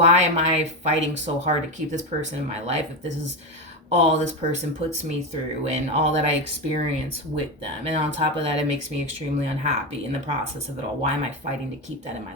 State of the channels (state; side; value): normal; both; correlation 0.14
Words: am I fighting so hard to keep this person in my life if this is all this person puts me through and all that I experience with them? And on top of that, it makes me extremely unhappy in the process of it all. Why am I fighting to keep that in my